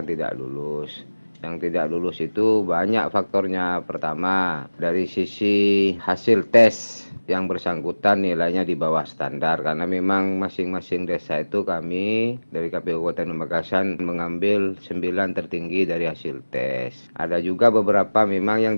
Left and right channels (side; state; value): both; inverted; correlation -1.00